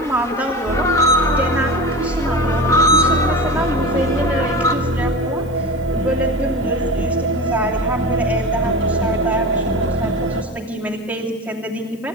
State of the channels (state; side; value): noise; left; hiss, 28 dB below the sound